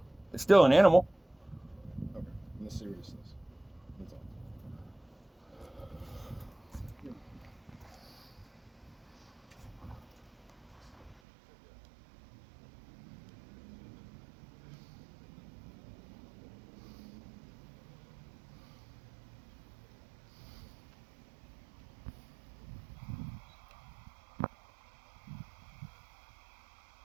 It's still an animal. Okay, in the seriousness. That's all.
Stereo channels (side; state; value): left; drops out; at 11.2 s